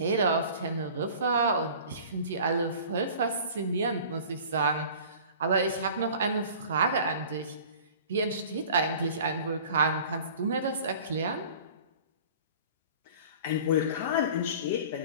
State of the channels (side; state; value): both; inverted; correlation -0.44